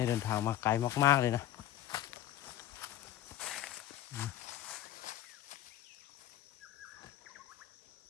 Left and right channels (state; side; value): quieter; right; 12.9 dB